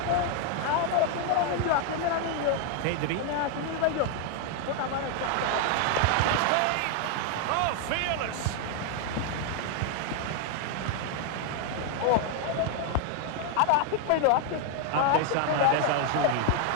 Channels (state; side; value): different; both; correlation 0.00